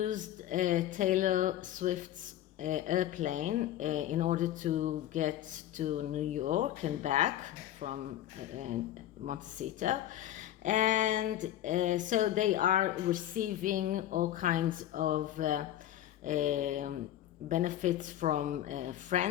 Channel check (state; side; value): quieter; right; 12.5 dB